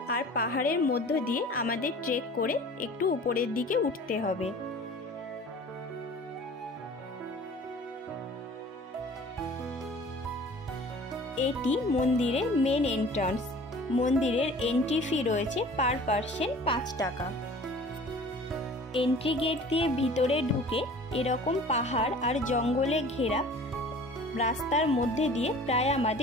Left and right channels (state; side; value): normal; both; correlation 0.45